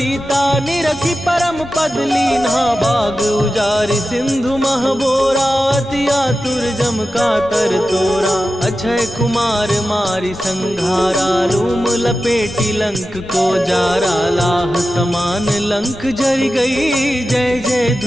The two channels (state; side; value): normal; both; correlation 0.93